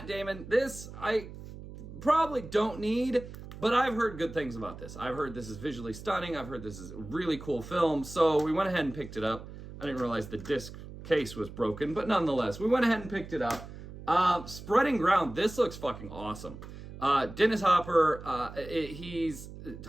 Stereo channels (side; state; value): right; noise; hum, 13 dB below the sound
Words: Damon. This I probably don't need, but I've heard good things about this. I've heard this is visually stunning. I've heard this is a really cool film. So we went ahead and picked it up. I didn't realize the disc case was broken, but nonetheless, we went ahead and picked it up. Spreading Ground. This looks fucking awesome. Dennis Hopper, he's